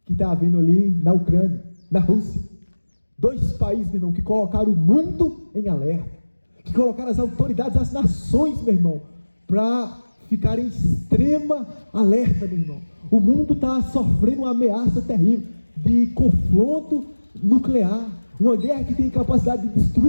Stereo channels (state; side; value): inverted; both; correlation -1.00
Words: que está havendo ali na Ucrânia, na Rússia. Dois países, meu irmão, que colocaram o mundo em alerta, que colocaram as autoridades, as nações, meu irmão, para ficar em extrema alerta, meu irmão. O mundo está sofrendo uma ameaça terrível de confronto nuclear, uma guerra que tem capacidade de